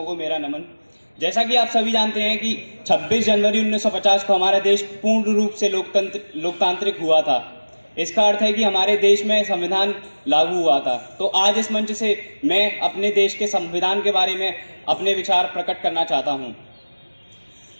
को मेरा नमन। जैसा कि आप सभी जानते हैं कि 26 जनवरी 1950 को हमारा देश पूर्ण रूप से लोकतांत्रिक हुआ था। इसका अर्थ है कि हमारे देश में संविधान लागू हुआ था। तो आज इस मंच से मैं अपने देश के संविधान के बारे में अपने विचार प्रकट करना चाहता हूं।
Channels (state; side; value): inverted; both; correlation -1.00